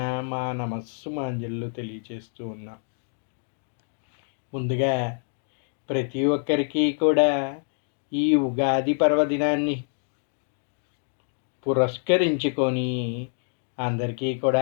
మా నమస్సు మాంజళ్ళు తెలియచేస్తూ ఉన్నాం. ముందుగా ప్రతి ఒక్కరికి కూడా ఈ ఉగాది పర్వదినాన్ని పురస్కరించుకొని అందరికీ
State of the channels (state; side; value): silent; right; digital silence